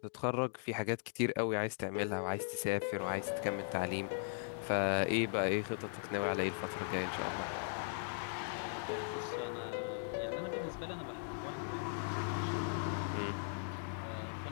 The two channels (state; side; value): silent; right; digital silence